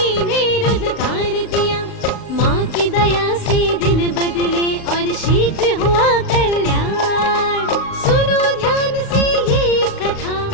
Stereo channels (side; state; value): right; late; 35 ms